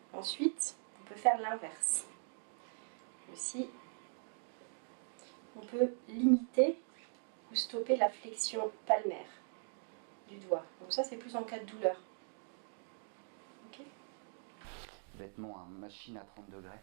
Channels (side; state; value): left; silent; digital silence